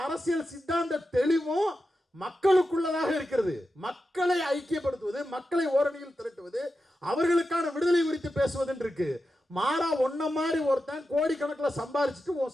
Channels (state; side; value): normal; both; correlation 0.90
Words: அரசியல் சித்தாந்த தெளிவும் மக்களுக்குள்ளதாக இருக்கிறது. மக்களை ஐக்கியப்படுத்துவது, மக்களை ஓரணியில் திரட்டுவது, அவர்களுக்கான விடுதலை குறித்து பேசுவது இருக்கு. மாறா ஒன்ன மாதிரி ஒருத்தன் கோடிக்கணக்கில் சம்பாதிச்சுட்டு